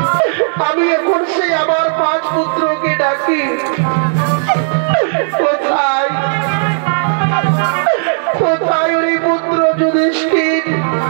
আমি এখন সেই আমার 5 পুত্রকে ডাকি। কোথায় কোথায় ওই পুত্র যুধিষ্ঠির,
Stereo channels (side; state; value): left; silent; digital silence